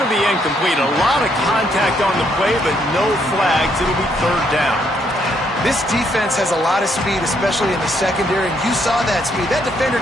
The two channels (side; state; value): both; normal; correlation 0.72